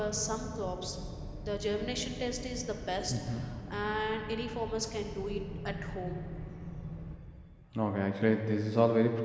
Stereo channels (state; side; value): identical; both; correlation 1.00